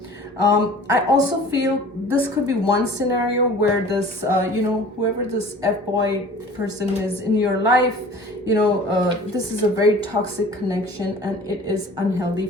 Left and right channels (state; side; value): normal; both; correlation 0.45